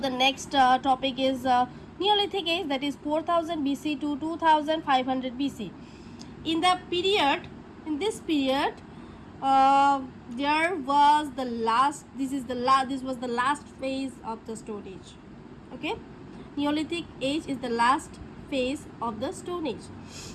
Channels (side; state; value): both; identical; correlation 1.00